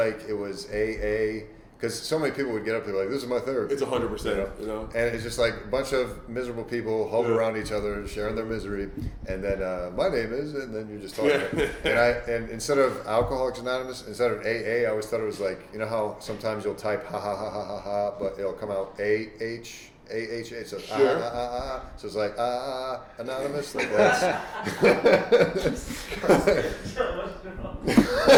it was AA, because so many people would get up there like, this is my therapy. It's 100%, you know? And it's just like a bunch of miserable people huddled around each other, sharing their misery, and then my name is, and then you're just talking. And instead of Alcoholics Anonymous, instead of AA, I always thought it was like, you know how sometimes you'll type ha ha ha ha ha ha, but it'll come out AH. AHA, so so it's like anonymous, like that's.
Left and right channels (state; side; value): identical; both; correlation 1.00